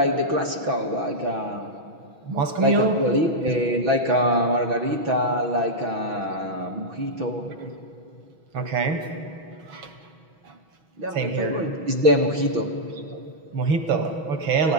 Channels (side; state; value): left; late; 6.1 ms